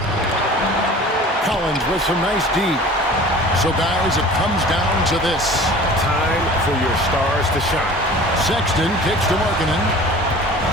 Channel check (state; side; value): normal; both; correlation 0.43